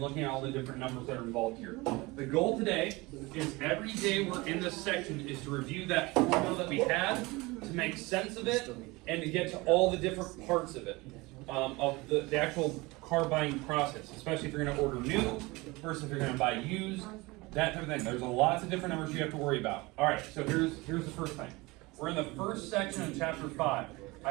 looking at all the different numbers that are involved here. The goal today is every day we're in this section is to review that formula that we had, to make sense of it, and to get to all the different parts of it, of the actual car buying process, especially if you're going to order new versus if you're going to buy used, that type of thing. There's lots of different numbers you have to worry about. All right, so here's the first thing. We're in the first section of chapter 5.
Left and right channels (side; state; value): left; quieter; 23.1 dB